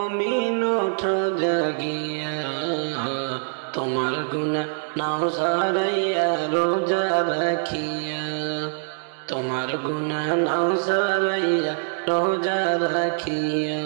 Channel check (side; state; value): left; silent; digital silence